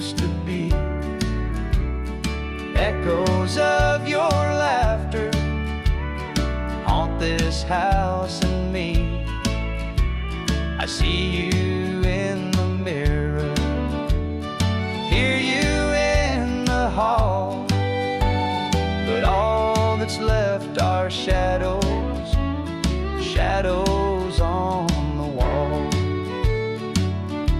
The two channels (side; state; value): both; identical; correlation 1.00